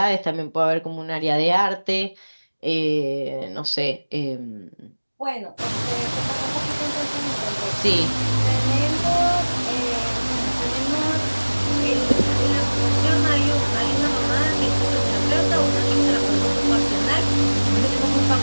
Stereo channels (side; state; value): both; inverted; correlation -1.00